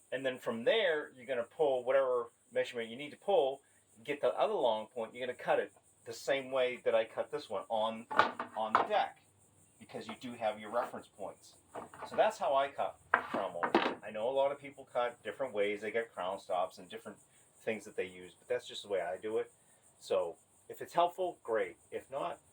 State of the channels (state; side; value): identical; both; correlation 1.00